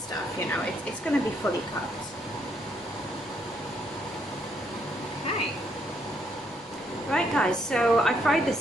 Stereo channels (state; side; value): normal; both; correlation 0.73